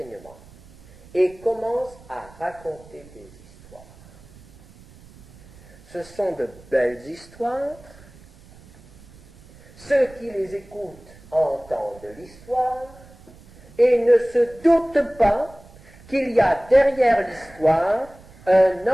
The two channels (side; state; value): right; noise; rumble, 23 dB below the sound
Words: et commence à raconter des histoires. Ce sont de belles histoires. Ceux qui les écoutent entendent l'histoire et ne se doutent pas qu'il y a derrière l'histoire un